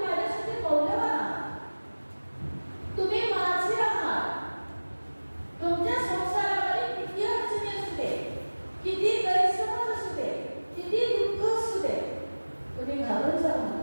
माझ्यासाठी मौल्यवान आहात, तुम्ही माझे आहात. तुमच्या संसारामध्ये किती अडचणी असू दे, किती गैरसमज असू दे, किती दुःख असू दे, तुम्ही घाबरून जाऊ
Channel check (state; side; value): inverted; both; correlation -1.00